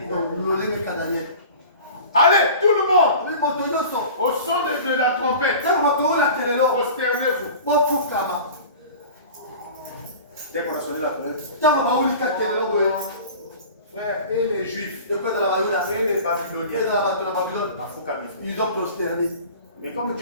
Allez, tout le monde, au son de la trompette, prosternez-vous. Dès qu'on a sonné la trompette, frère, et les Juifs, et les Babyloniens, ils ont prosterné. mais comme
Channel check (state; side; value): inverted; both; correlation -0.39